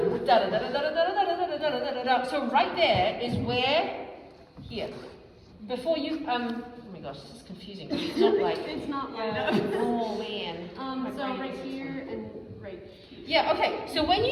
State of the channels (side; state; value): both; identical; correlation 1.00